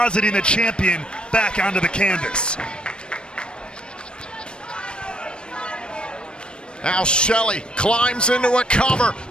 the champion back onto the canvas. Now Shelley climbs into a cover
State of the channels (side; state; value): right; late; 0.054 ms